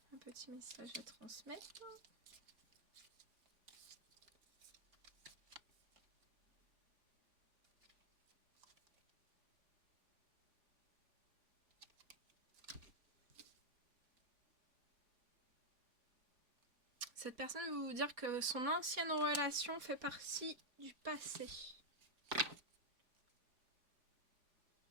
Un petit message à transmettre. Cette personne veut vous dire que son ancienne relation fait partie du passé.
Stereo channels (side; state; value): left; late; 4.2 ms